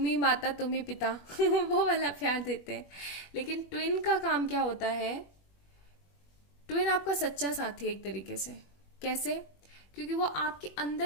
ही माता तुम ही पिता वो वाला प्यार देते हैं। लेकिन ट्विन का काम क्या होता है, ट्विन आपका सच्चा साथी है एक तरीके से। कैसे? क्योंकि वो आपके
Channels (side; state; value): right; late; 21 ms